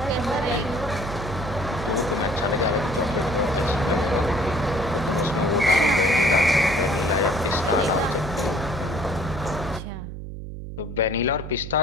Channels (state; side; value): noise; right; hum, 9 dB below the sound